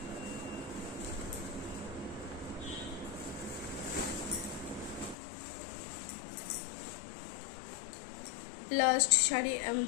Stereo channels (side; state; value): right; drops out; at 5.2 s